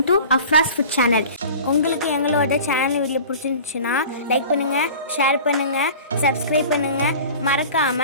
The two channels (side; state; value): both; inverted; correlation -0.40